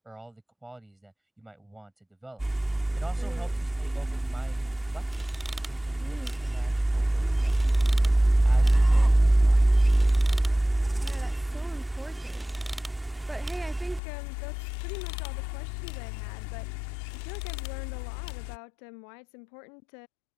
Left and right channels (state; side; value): drops out; right; at 14.0 s